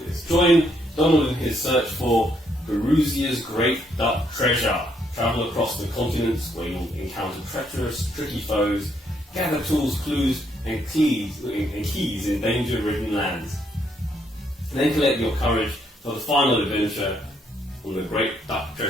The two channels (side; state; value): both; normal; correlation 0.72